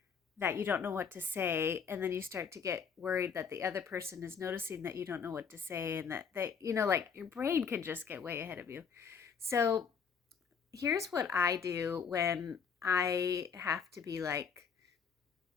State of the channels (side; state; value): right; quieter; 6.4 dB